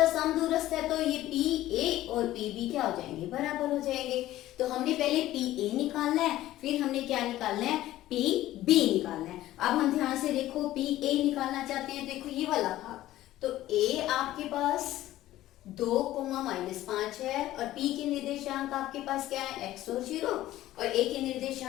समदूरस्थ है तो ये PA और PB क्या हो जाएंगे? बराबर हो जाएंगे। तो हमने पहले PA निकालना है, फिर हमने क्या निकालना है? PB निकालना है। अब हम ध्यान से देखो, PA निकालना चाहते हैं, देखो ये वाला भाग, तो A आपके पास 2,-5 है और P के निर्देशांक आपके पास क्या है? x और 0, और A के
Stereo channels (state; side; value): quieter; right; 14.8 dB